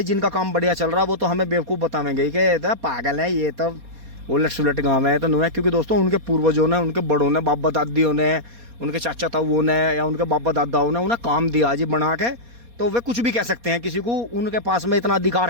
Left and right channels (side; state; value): left; late; 4.2 ms